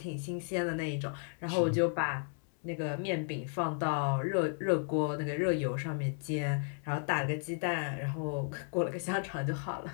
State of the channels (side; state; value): right; silent; 55 dB below the other